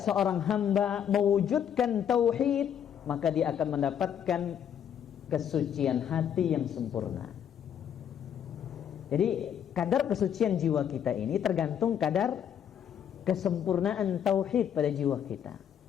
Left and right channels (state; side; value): quieter; right; 9.0 dB